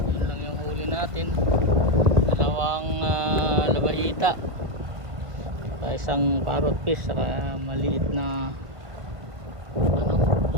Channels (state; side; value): late; left; 1.7 ms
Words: Yan lang yung huli natin. Dalawang labahita. Saka isang parrot fish, saka maliit na ano,